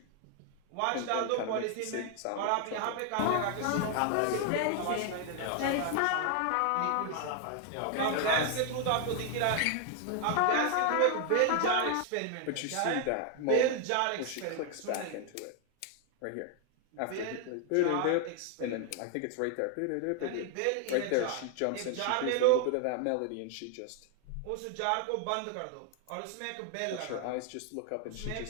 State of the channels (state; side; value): different; both; correlation 0.00